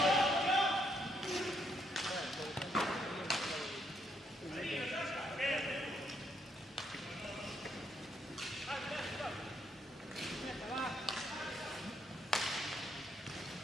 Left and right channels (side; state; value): both; normal; correlation 0.75